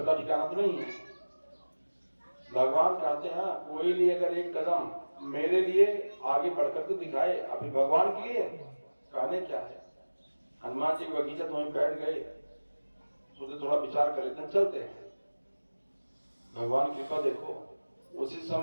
ठिकाना तो नहीं है। भगवान कहते हैं कोई लिए अगर एक कदम मेरे लिए आगे बढ़कर के दिखाए, अभी भगवान के लिए कहने क्या है। हनुमान जी की बगीचा तो वहीं बैठ गए, सोचे थोड़ा विचार कर लेते हैं चलते हैं। भगवान की कृपा देखो उसी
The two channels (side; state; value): both; inverted; correlation -1.00